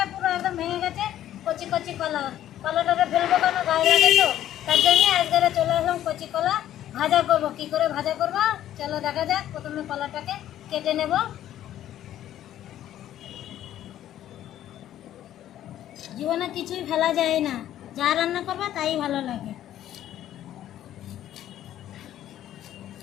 পুরো একদম ভেঙে গেছে। কচি কচি কলা, কলাটাকে ফেলবো কেন, গায়ে লাগে তো, তার জন্য আজকে চলে আসলাম কচি কলা ভাজা করবো। কি করে ভাজা করবো চলো দেখা যাক। প্রথমে কলাটাকে কেটে নেব। জীবনে কিছুই ফেলা যায় না, যা রান্না করবে তাই ভালো লাগে।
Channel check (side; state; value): right; quieter; 12.1 dB